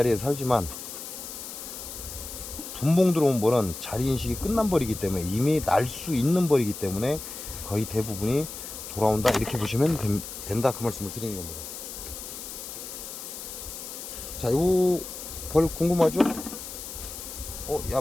살지만 분봉 들어온 벌은 자리 인식이 끝난 벌이기 때문에 이미 날 수 있는 벌이기 때문에 거의 대부분이 돌아온다, 이렇게 보시면 된다, 그 말씀을 드리는 겁니다. 자, 요 벌 궁금하죠? 야,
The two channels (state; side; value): noise; left; hiss, 10 dB below the sound